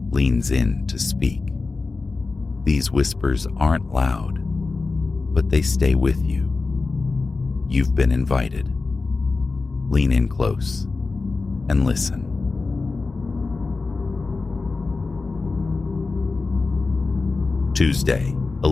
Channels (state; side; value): quieter; right; 3.9 dB